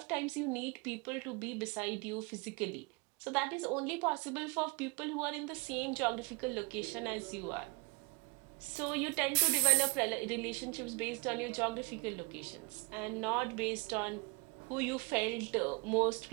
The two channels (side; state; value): left; quieter; 23.6 dB